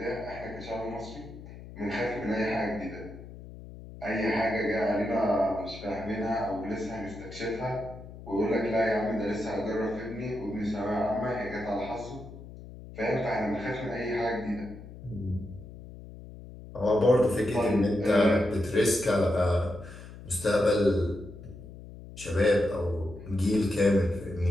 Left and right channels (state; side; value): noise; left; hum, 15 dB below the sound